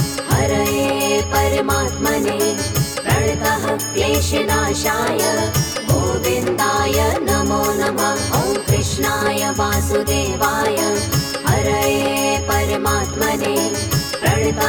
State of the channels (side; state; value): both; identical; correlation 1.00